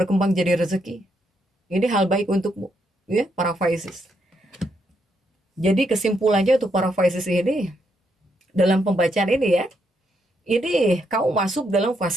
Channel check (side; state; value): both; normal; correlation 0.78